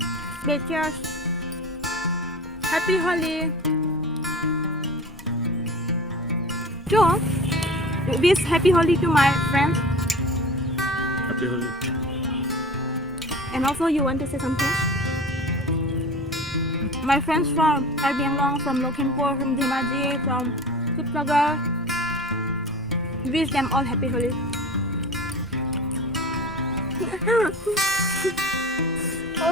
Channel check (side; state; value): both; normal; correlation 0.37